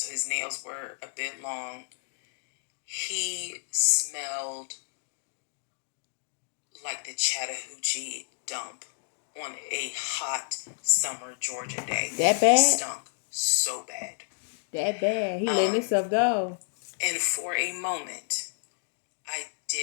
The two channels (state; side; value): silent; right; digital silence